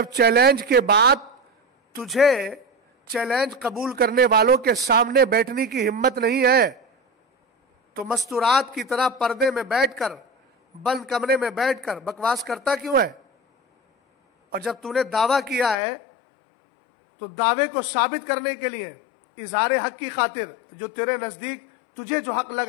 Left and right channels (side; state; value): right; drops out; at 15.8 s